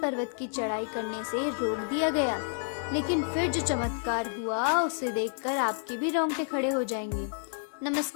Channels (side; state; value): right; silent; digital silence